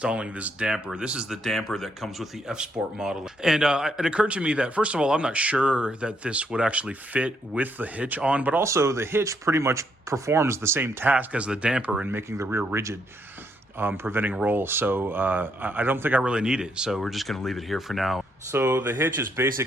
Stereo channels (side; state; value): both; normal; correlation 0.75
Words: this damper. This is the damper that comes with the F-Sport model. And it occurred to me that, first of all, I'm not sure that this would actually fit with the hitch on, but also the hitch pretty much performs the same task as the damper in making the rear rigid, preventing roll. So I don't think I really need it. So we're just gonna leave it here for now. So the hitch is